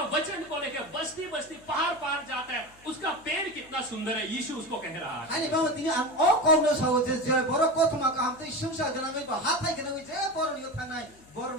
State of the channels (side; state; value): left; noise; hum, 27 dB below the sound